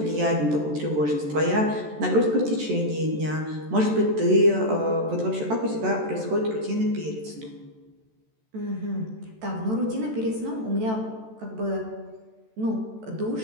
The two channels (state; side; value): late; left; 14 ms